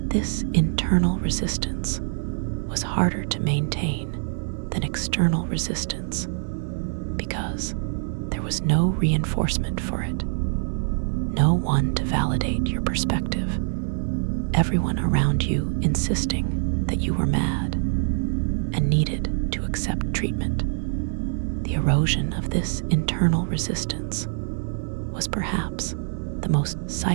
This internal resistance was harder to maintain than external resistance because there was no reinforcement for it, no one to validate your perspective, everyone around you insisting that you were mad and needed to accept treatment. The erosion of this internal resistance was perhaps the most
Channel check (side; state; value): left; silent; digital silence